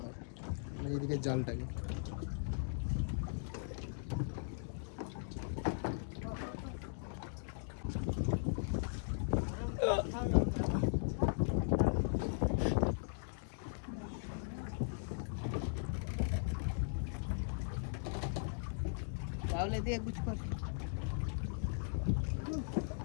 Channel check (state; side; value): silent; right; digital silence